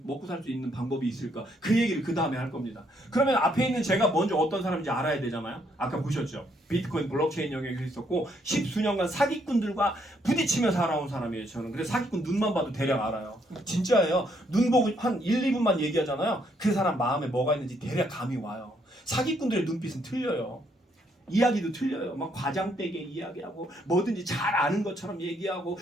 먹고 살 수 있는 방법이 있을까? 그 얘기를 그 다음에 할 겁니다. 그러면 앞에 있는 제가 먼저 어떤 사람인지 알아야 되잖아요. 아까 보셨죠? 비트코인 블록체인 영역에 있었고 10수년간 사기꾼들과 부딪히며 살아온 사람이에요. 저는. 그래서 사기꾼 눈만 봐도 대략 알아요. 진짜예요. 눈 보고 한 1, 2분만 얘기하잖아요. 그 사람 마음에 뭐가 있는지 대략 감이 와요. 사기꾼들의 눈빛은 틀려요. 이야기도 틀려요. 막 과장되게 이야기하고 뭐든지 잘 아는 것처럼 얘기하고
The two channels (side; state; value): both; normal; correlation 0.72